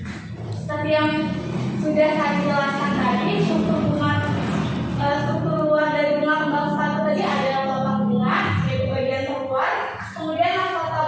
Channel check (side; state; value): both; identical; correlation 1.00